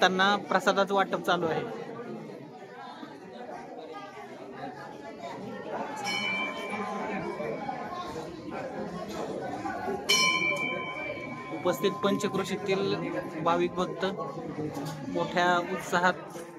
प्रसादाचं वाटप चालू आहे. उपस्थित पंचक्रोशीतील भाविक भक्त मोठ्या उत्साहात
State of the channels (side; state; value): both; identical; correlation 1.00